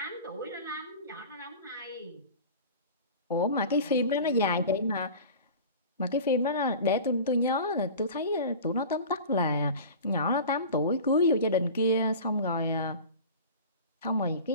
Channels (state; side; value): inverted; both; correlation -0.36